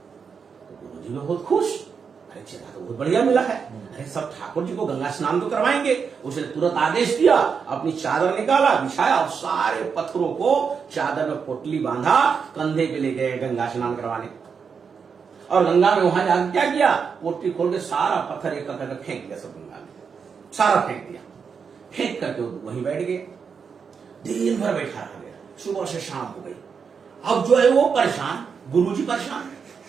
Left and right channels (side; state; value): left; quieter; 6.1 dB